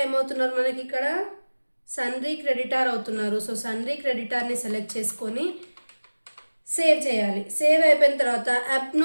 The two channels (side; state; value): both; inverted; correlation -1.00